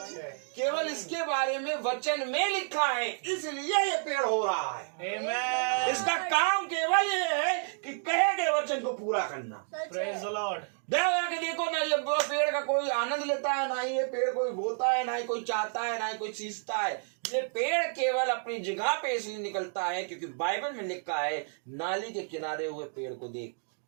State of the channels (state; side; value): silent; left; 57 dB below the other